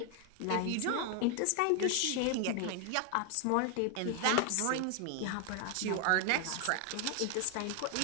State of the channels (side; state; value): both; different; correlation 0.01